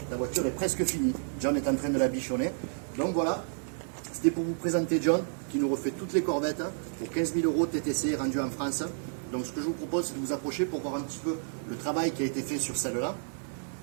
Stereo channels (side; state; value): left; silent; digital silence